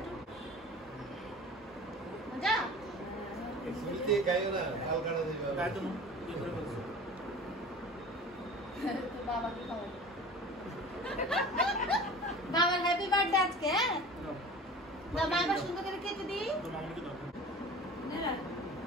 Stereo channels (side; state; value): both; normal; correlation 0.39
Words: মজা। বাবাকে খাও। বাবার হ্যাপি বার্থডে আজকে। হ্যাঁ দাও, মা এবার সুন্দর করে কেটে দিই। না